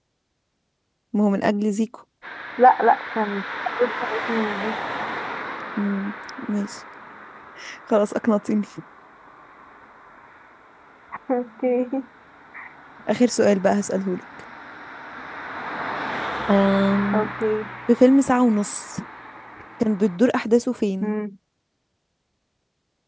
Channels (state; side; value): identical; both; correlation 1.00